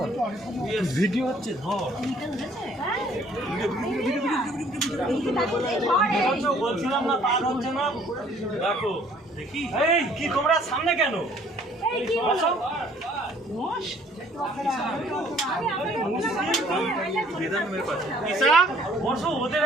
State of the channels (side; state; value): both; normal; correlation 0.58